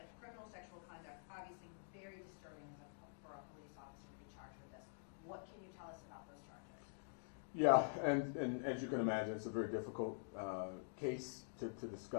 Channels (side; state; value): right; silent; digital silence